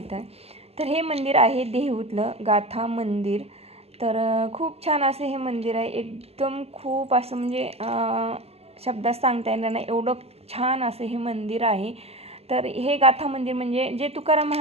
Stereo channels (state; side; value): late; left; 0.29 ms